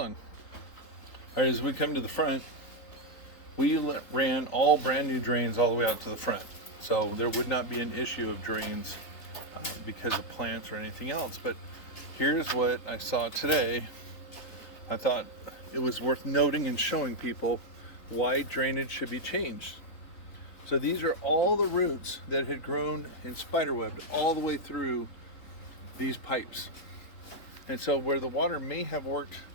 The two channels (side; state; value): right; late; 3.7 ms